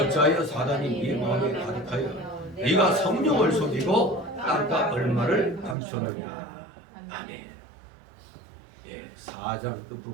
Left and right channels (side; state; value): left; drops out; at 5.8 s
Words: 사단이 네 마음에 가득하여 네가 성령을 속이고 땅과 얼마를 감췄느냐. 아멘. 4장 그